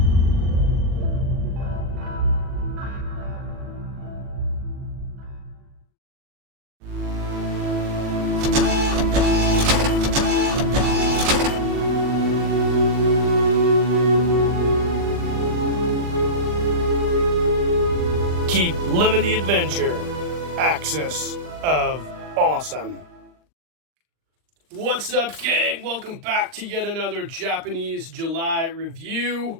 Keep living the adventure. Axis of Awesome. What's up, gang? Welcome back to yet another Japanese July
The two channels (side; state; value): left; late; 39 ms